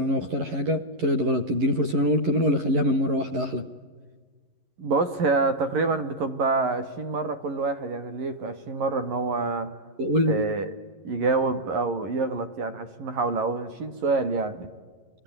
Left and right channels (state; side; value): late; left; 11 ms